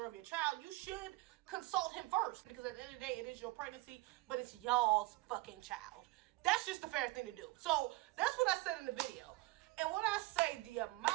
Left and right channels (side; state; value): left; quieter; 20.8 dB